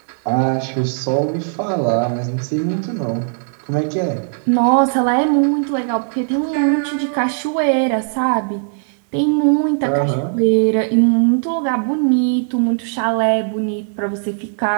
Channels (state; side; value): silent; left; digital silence